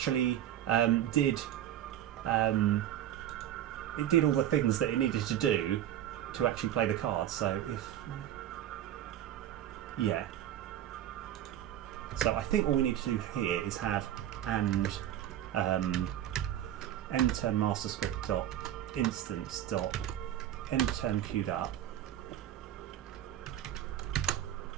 did all the things that it needed to do to actually play the card. So yeah. So I think all we need to do here is have end turn master script dot instance dot end turn queued up.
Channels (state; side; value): quieter; left; 11.6 dB